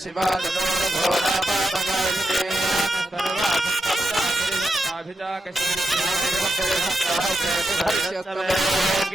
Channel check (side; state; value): both; normal; correlation 0.86